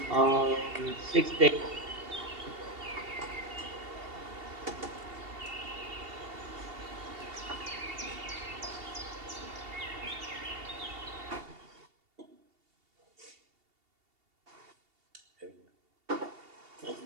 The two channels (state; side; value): late; left; 2.8 ms